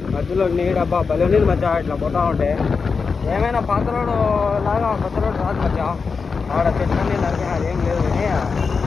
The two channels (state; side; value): quieter; right; 5.1 dB